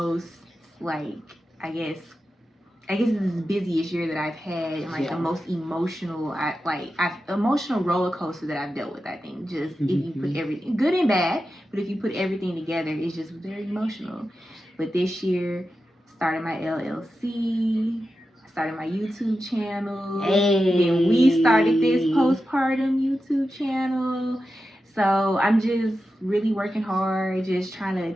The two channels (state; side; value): normal; both; correlation 0.91